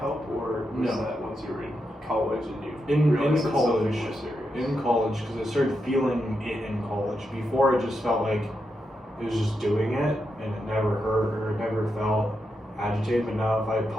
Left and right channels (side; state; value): both; normal; correlation 0.85